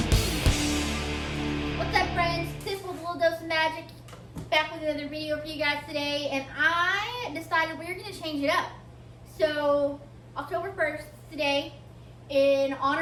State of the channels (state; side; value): identical; both; correlation 1.00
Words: What's up, friends? This was a little dose of magic. Back with another video for you guys today, and I decided we were going to change it up. So, October 1st today, in